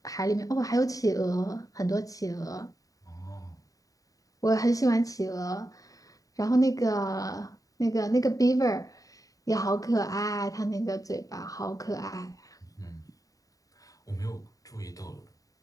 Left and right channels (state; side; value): late; right; 0.17 ms